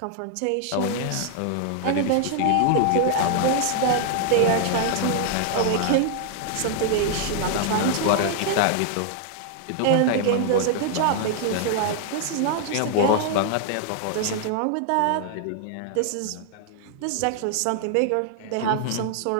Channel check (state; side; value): different; both; correlation 0.00